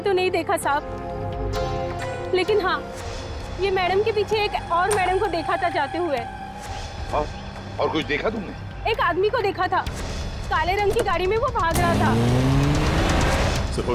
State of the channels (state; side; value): identical; both; correlation 1.00